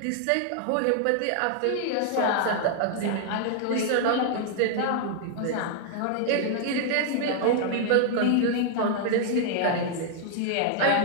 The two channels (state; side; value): different; both; correlation 0.00